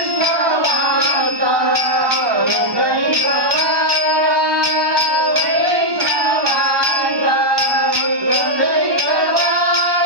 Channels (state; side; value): late; left; 1.2 ms